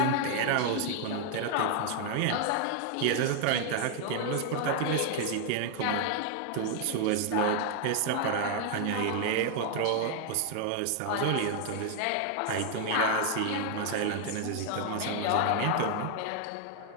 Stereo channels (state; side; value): different; both; correlation 0.00